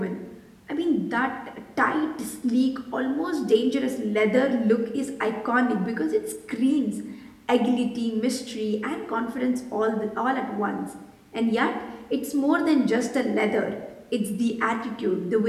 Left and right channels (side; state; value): both; identical; correlation 1.00